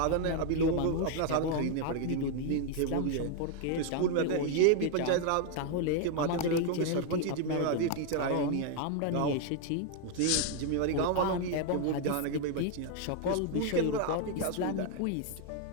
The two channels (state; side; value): different; both; correlation 0.00